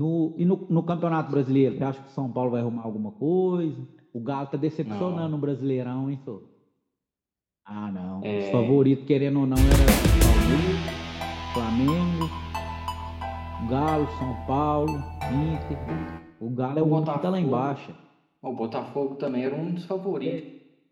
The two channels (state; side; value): identical; both; correlation 1.00